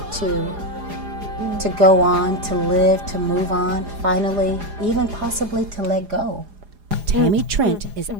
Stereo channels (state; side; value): late; left; 4.9 ms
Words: to go on, to live, to move on, finally, even possibly to let go? Tammy Trent is